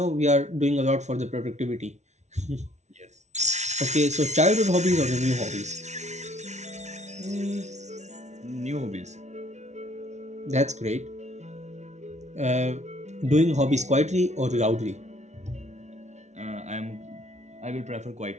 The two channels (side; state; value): left; late; 0.33 ms